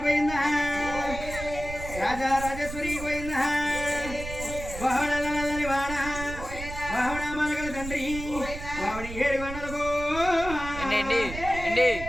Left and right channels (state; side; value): noise; right; rumble, 10 dB below the sound